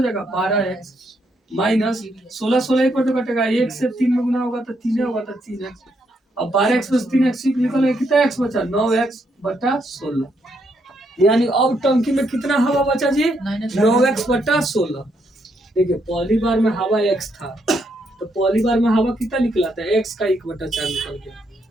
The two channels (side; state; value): both; normal; correlation 0.76